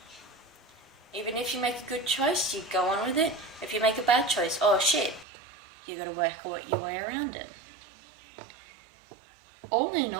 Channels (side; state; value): left; drops out; at 5.2 s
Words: Even if you make a good choice, you go on with it. If you make a bad choice, oh shit, you gotta work your way around it. All in